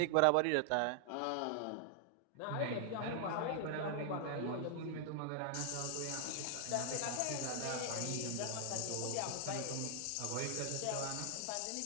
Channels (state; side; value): different; both; correlation 0.00